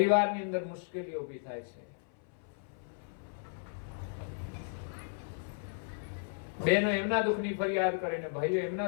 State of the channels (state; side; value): silent; right; 55 dB below the other